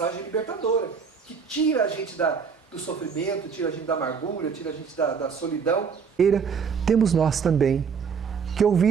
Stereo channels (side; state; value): left; quieter; 6.1 dB